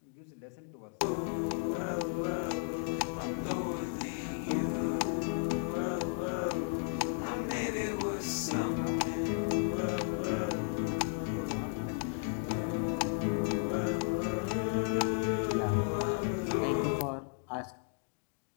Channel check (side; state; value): right; silent; digital silence